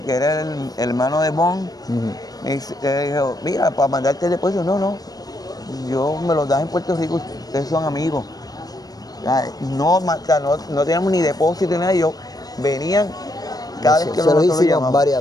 era el hermano de Bon, me dijo, mira, para mandarte el depósito, no, yo me los das en Puerto Rico, ustedes son amigos. No teníamos ni depósito ni nada, ellos venían cada vez que nosotros lo llamamos.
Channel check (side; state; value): right; late; 0.18 ms